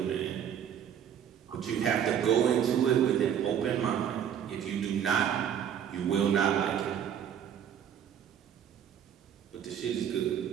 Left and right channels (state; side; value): quieter; left; 8.9 dB